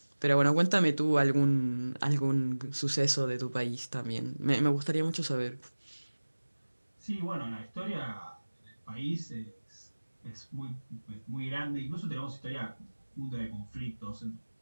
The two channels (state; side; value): inverted; both; correlation -1.00